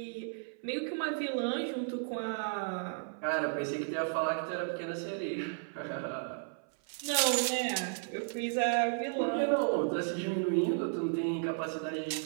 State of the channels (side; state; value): left; silent; 55 dB below the other